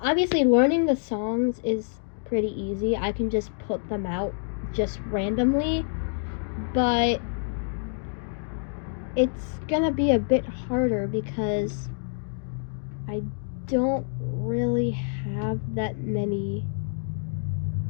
learning the songs is pretty easy. I can just put them out just randomly, but it's gonna be a bit harder because I don't really have that many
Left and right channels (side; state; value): right; silent; digital silence